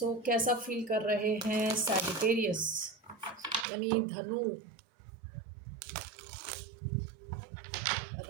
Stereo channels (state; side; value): drops out; left; at 3.7 s